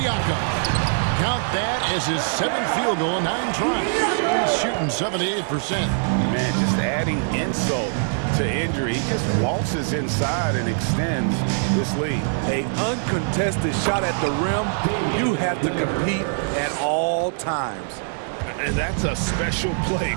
Count that as his 7th field goal, 9 tries. He's shooting 78%. Man, just adding insult to injury. He just waltzes inside and extends this lead. An uncontested shot at the rim, you have to compete at all times. And that's a special play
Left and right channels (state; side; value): silent; left; 64 dB below the other